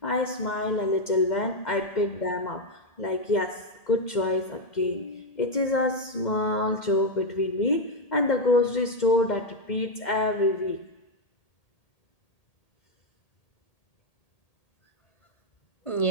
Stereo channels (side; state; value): right; late; 2.1 ms